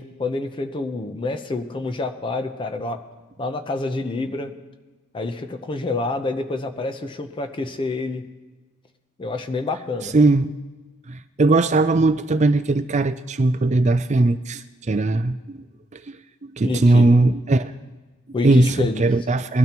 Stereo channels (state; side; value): normal; both; correlation 0.75